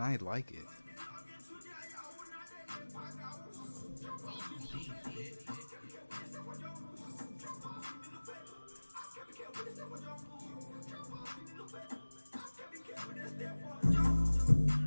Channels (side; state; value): both; inverted; correlation -1.00